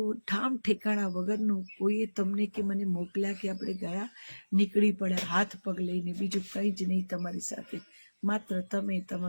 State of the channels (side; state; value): both; inverted; correlation -1.00